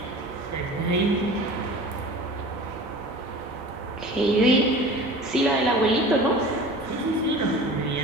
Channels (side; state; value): both; normal; correlation 0.39